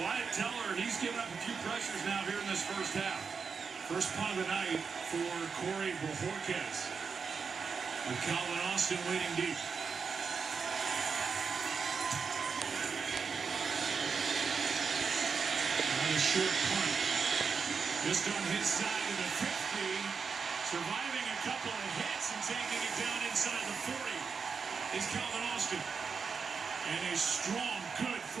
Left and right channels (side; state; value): left; quieter; 5.6 dB